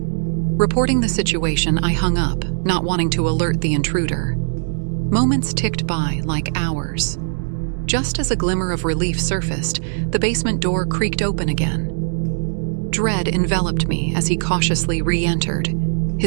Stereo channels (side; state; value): left; silent; digital silence